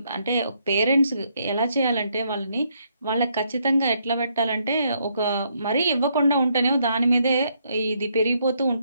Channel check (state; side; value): inverted; both; correlation -0.73